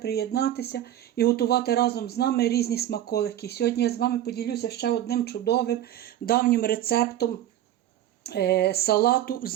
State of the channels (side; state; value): left; quieter; 12.3 dB